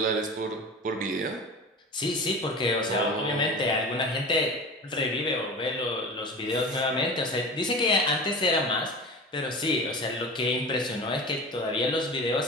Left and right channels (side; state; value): both; normal; correlation 0.33